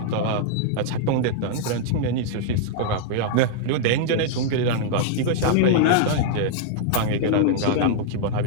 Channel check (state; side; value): different; both; correlation -0.01